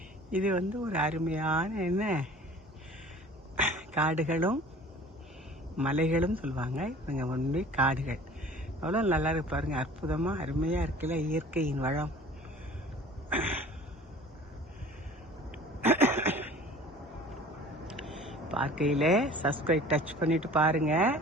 இது ஒரு அருமையான காடுகளும் மலைகளும் சொல்லுவாங்க. இவங்க ஒன்றுமே காடுகள். அவ்வளோ நல்லா இருக்கு பாருங்க, அற்புதமாக அருமையாக இருக்குல்ல இயற்கையின் வளம். பார்க்கையில் சப்ஸ்கிரைப் டச் பண்ணிட்டு பாருங்க.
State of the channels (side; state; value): both; normal; correlation 0.46